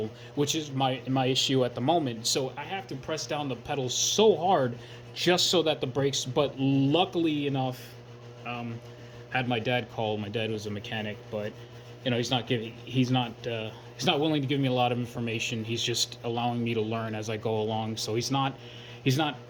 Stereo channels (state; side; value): identical; both; correlation 1.00